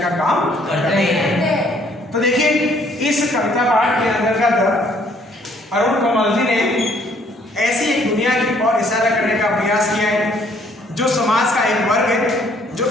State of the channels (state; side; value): normal; both; correlation 0.63